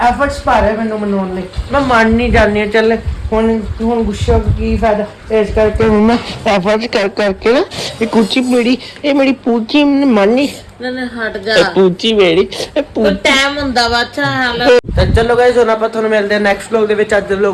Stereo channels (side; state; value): both; identical; correlation 1.00